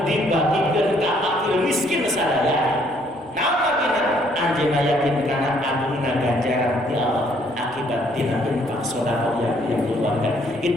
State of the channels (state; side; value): normal; both; correlation 0.65